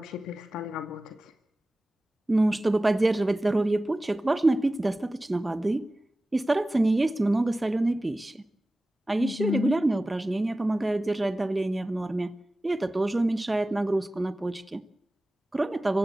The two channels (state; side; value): normal; both; correlation 0.96